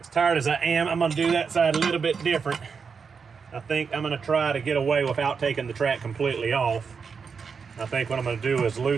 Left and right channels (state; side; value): quieter; left; 5.7 dB